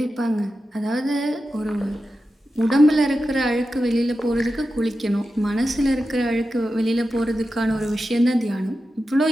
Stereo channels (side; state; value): both; normal; correlation 0.91